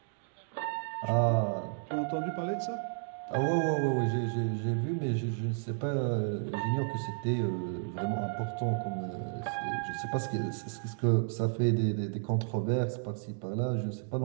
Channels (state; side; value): silent; left; digital silence